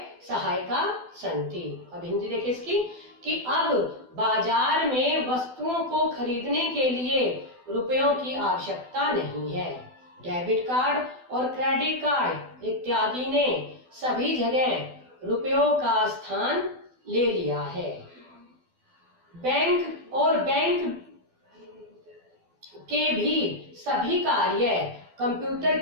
सहायका सन्ति। अब हिंदी देखिए इसकी कि अब बाजार में वस्तुओं को खरीदने के लिए रुपयों की आवश्यकता नहीं है। डेबिट कार्ड और क्रेडिट कार्ड इत्यादि ने सभी जगह रुपयों का स्थान ले लिया है। बैंक और बैंक के भी सभी कार्य कंप्यूटर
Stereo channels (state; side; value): late; left; 12 ms